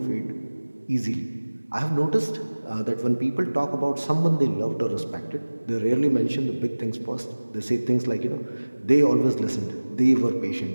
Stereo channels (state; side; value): inverted; both; correlation -1.00